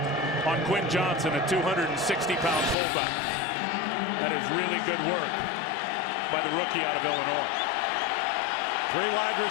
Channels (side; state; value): right; drops out; at 2.8 s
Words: on Quinn Johnson, a 260-pound fullback. That is really good work by the rookie out of Illinois. 3 wide